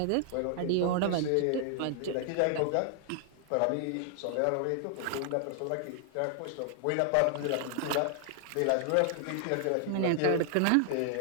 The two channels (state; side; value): different; both; correlation 0.00